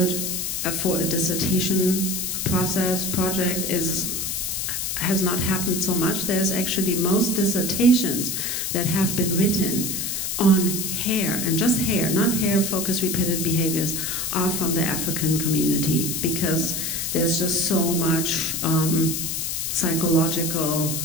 for a dissertation project has not happened so much. There's actually most dissertations that have been written on hair, and just hair, not hair-focused repetitive behaviors, are from the African community, because there's just so much psychological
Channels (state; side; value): noise; left; hiss, 2 dB below the sound